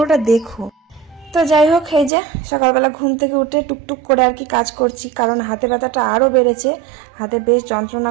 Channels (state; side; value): drops out; left; at 2.1 s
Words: দেখো। তো যাই হোক, এই যে সকালবেলা ঘুম থেকে উঠে টুকটুক করে আর কি কাজ করছি, কারণ হাতে ব্যথাটা আরও বেড়েছে, হাতে বেশ যন্ত্রণা